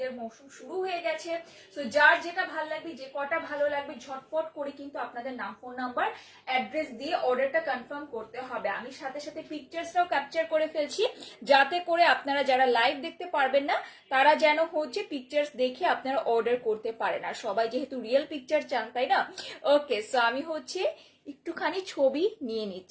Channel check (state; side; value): identical; both; correlation 1.00